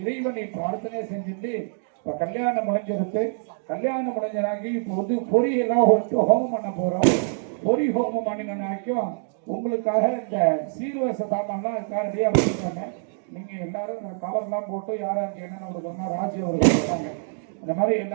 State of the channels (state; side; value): silent; left; digital silence